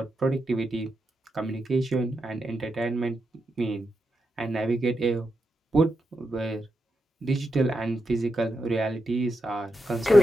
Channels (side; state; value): both; normal; correlation 0.86